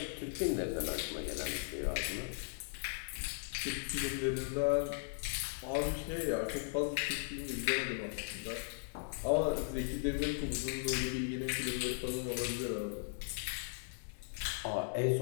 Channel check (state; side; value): silent; right; digital silence